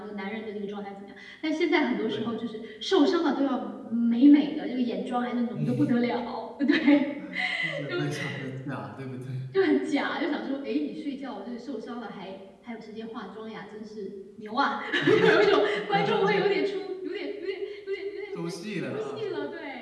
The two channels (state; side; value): identical; both; correlation 1.00